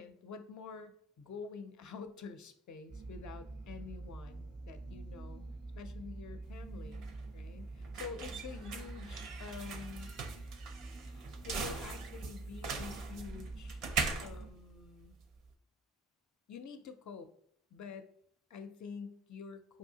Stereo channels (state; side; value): normal; both; correlation 0.50